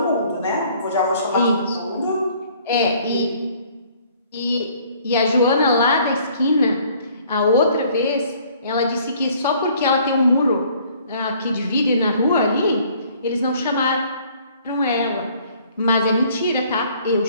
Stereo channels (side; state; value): both; inverted; correlation -0.58